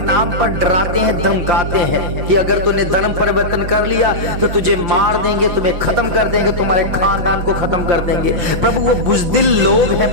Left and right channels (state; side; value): late; left; 6.1 ms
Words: पर डराते हैं, धमकाते हैं कि अगर तूने धर्म परिवर्तन कर लिया तो तुझे मार देंगे, तुम्हें खत्म कर देंगे, तुम्हारे खानदान को खत्म कर देंगे प्रभु। वो बुजदिल लोग हैं